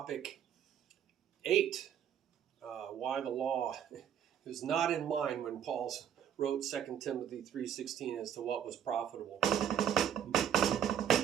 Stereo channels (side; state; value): left; quieter; 9.2 dB